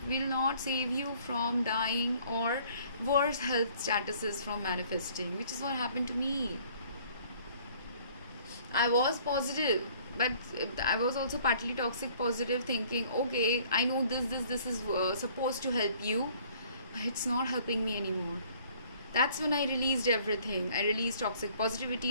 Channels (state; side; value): inverted; both; correlation -0.57